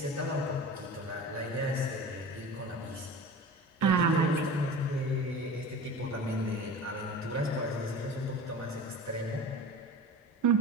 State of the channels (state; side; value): normal; both; correlation 0.35